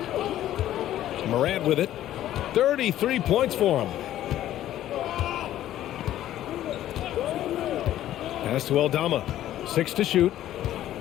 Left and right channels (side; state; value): right; quieter; 12.8 dB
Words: Morant with it. 33 points for him. Pass to Aldama. 6 to shoot.